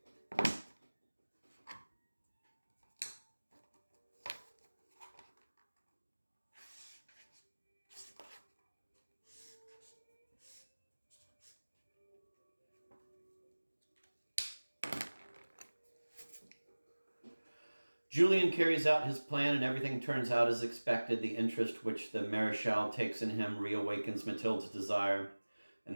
Julien carries out his plan, and everything turns out as expected. The interest which the Marechal takes in him reawakens Mathilde's desire, and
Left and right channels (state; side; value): inverted; both; correlation -1.00